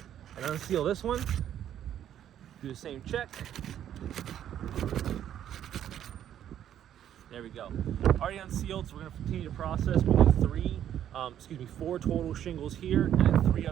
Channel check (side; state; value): left; quieter; 10.5 dB